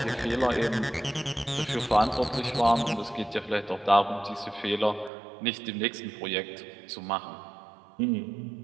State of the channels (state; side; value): drops out; left; at 5.1 s